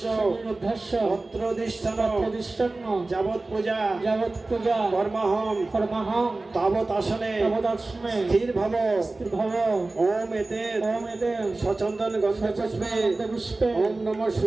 অত্রদিষ্ঠন যাবৎ পূজা কর্মহম তাবৎ আসনে স্থির ভব। ওম এতে সচন্দন গন্ধ পুষ্পে ওম নমঃ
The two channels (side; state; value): left; quieter; 3.2 dB